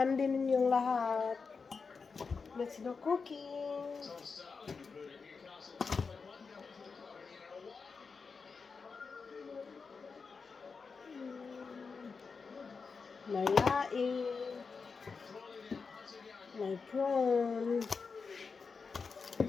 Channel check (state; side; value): quieter; right; 5.0 dB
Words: ninyong lahat? Let's do cooking. May laing. May prawn.